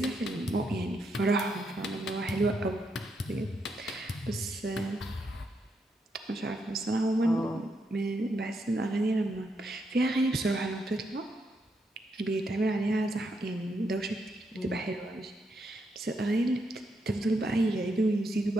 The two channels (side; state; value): both; normal; correlation 0.80